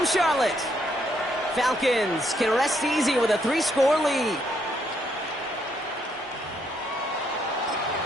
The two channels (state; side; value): normal; both; correlation 0.74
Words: Charlotte. Falcons can rest easy with a 3-score lead.